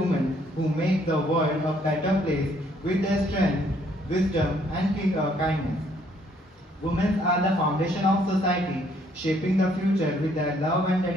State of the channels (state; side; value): normal; both; correlation 0.66